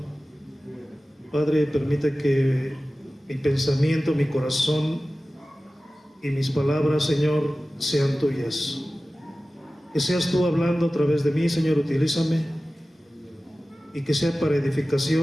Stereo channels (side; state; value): both; normal; correlation 0.96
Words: Padre, permite que mi pensamiento, mi corazón y mis palabras, Señor, sean tuyas. Que seas tú hablando a través de mí, Señor, utilízame, y que sea para